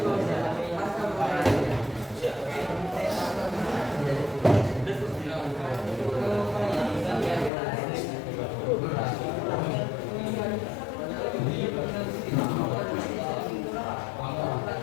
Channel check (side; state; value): right; drops out; at 7.5 s